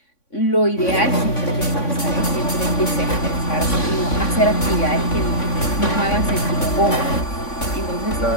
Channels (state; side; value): late; right; 3.5 ms